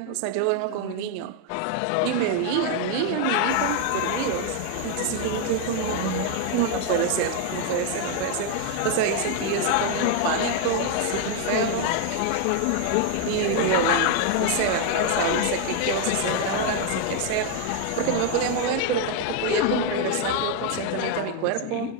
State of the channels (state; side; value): different; both; correlation 0.01